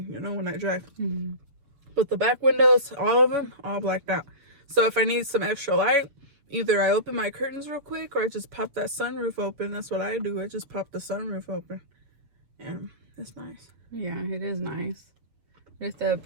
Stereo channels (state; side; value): late; left; 7.0 ms